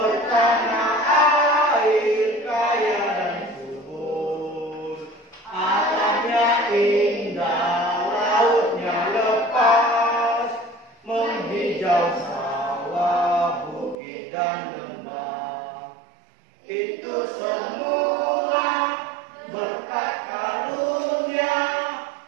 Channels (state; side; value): drops out; left; at 14.0 s